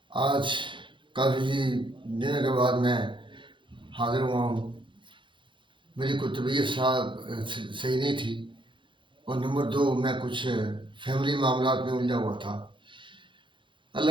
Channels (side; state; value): left; late; 0.23 ms